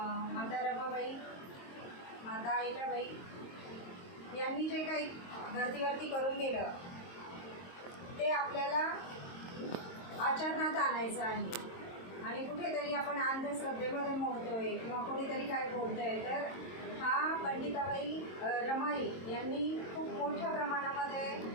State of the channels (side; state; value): right; late; 22 ms